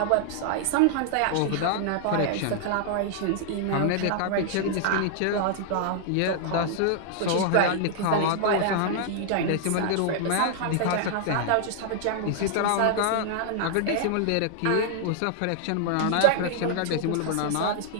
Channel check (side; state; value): both; different; correlation -0.01